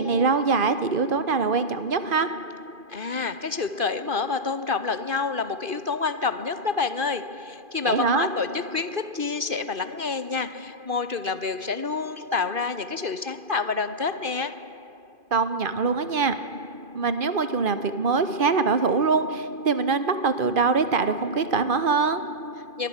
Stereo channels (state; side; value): late; left; 2.5 ms